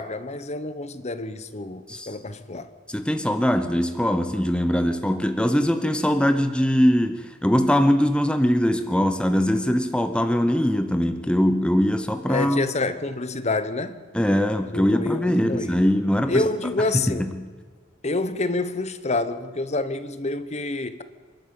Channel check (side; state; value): both; normal; correlation 0.85